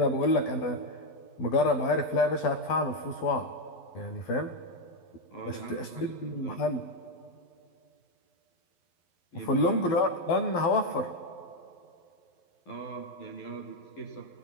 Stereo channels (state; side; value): late; right; 11 ms